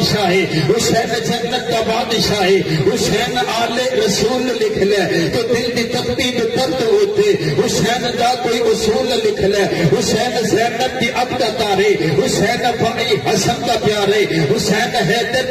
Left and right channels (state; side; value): identical; both; correlation 1.00